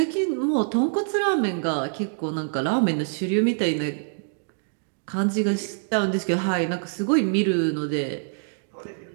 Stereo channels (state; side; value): silent; left; digital silence